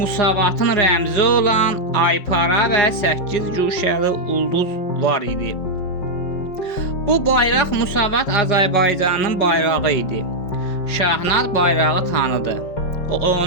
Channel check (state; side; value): late; right; 5.4 ms